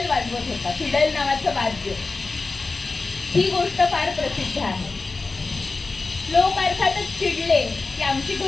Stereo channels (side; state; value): right; quieter; 3.8 dB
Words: वाजवत होता, फिडल नावाचं वाद्य. ही गोष्ट फार प्रसिद्ध आहे. लोक अर्थातच चिडले की आमची